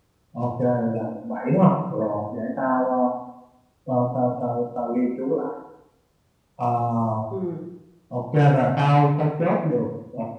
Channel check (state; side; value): identical; both; correlation 1.00